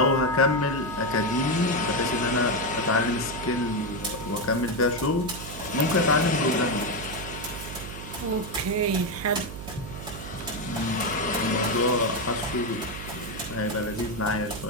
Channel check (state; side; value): noise; right; hum, 10 dB below the sound